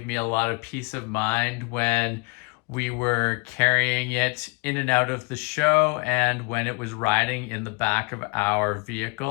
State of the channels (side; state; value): right; quieter; 29.4 dB